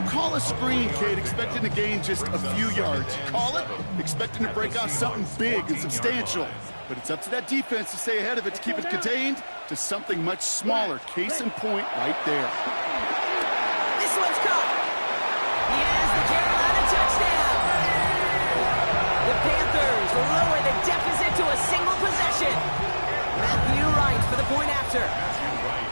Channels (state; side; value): inverted; both; correlation -1.00